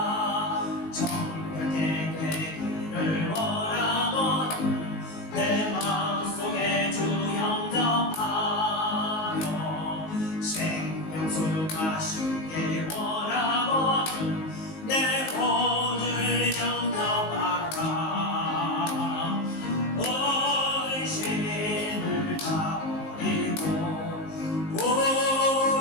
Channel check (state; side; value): late; right; 19 ms